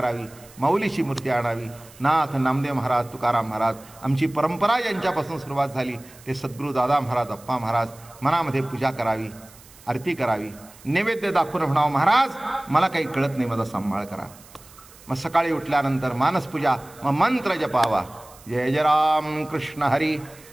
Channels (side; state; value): right; noise; hiss, 23 dB below the sound